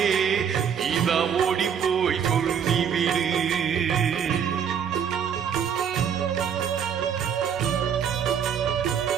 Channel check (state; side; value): quieter; left; 7.8 dB